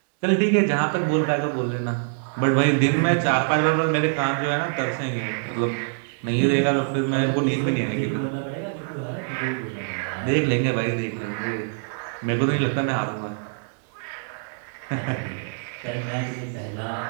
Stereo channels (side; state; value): left; silent; digital silence